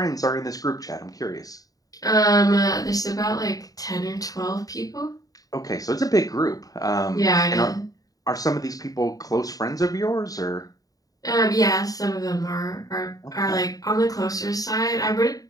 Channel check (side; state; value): right; late; 0.18 ms